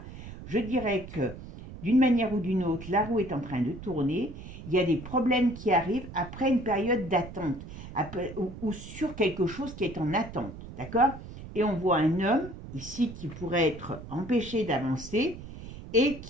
je dirais que d'une manière ou d'une autre, la roue est en train de tourner. Il y a des problèmes qui arrivent après une période d'attente ou sur quelque chose qui est en attente. D'accord? Et on voit un homme ici qui pourrait être empêché d'avancer et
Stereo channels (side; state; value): right; noise; rumble, 13 dB below the sound